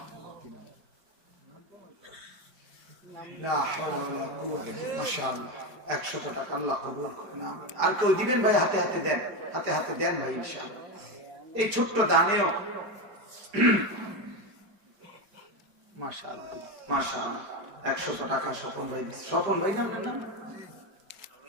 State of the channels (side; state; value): left; late; 5.1 ms